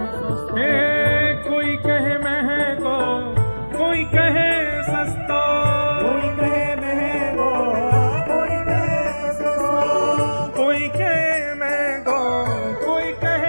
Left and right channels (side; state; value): both; inverted; correlation -1.00